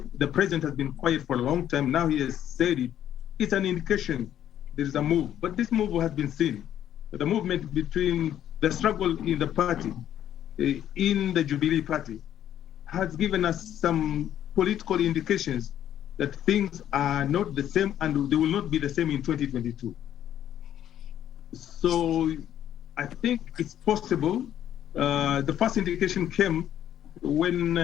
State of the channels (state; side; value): quieter; right; 10.9 dB